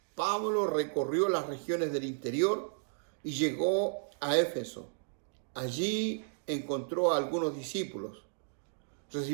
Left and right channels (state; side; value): silent; left; digital silence